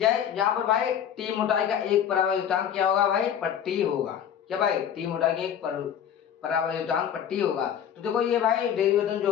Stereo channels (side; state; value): right; quieter; 9.2 dB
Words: पर भाई टी मोटाई का एक परावैद्युतांक क्या होगा भाई? पट्टी होगा। क्या भाई? टी मोटाई की एक परावैद्युतांक पट्टी होगा। तो देखो ये भाई डेरिवेशन